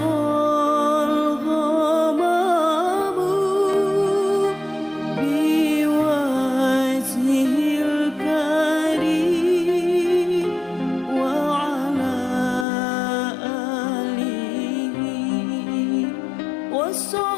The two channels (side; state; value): right; drops out; at 12.7 s